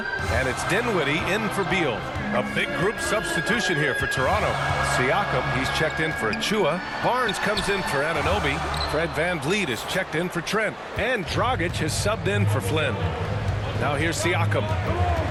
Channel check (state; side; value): identical; both; correlation 1.00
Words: And it's Dinwiddie in for Beal. A big group substitution here for Toronto. Siakam, he's checked in for Achua. Barnes comes in for Anunoby. Fred VanVleet is checked in for Trent. And Dragic has subbed in for Flynn. Now here's Siakam.